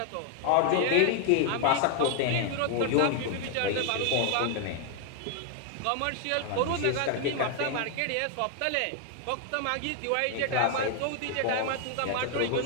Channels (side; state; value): both; different; correlation 0.00